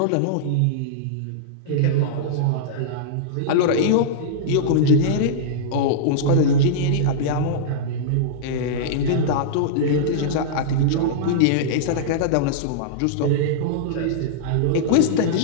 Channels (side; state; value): both; different; correlation -0.03